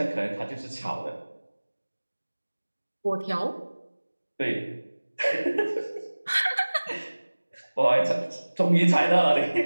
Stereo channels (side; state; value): both; inverted; correlation -1.00